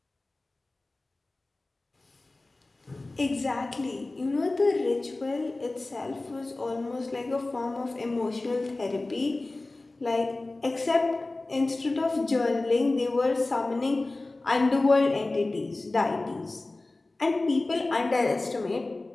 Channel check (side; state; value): right; quieter; 3.0 dB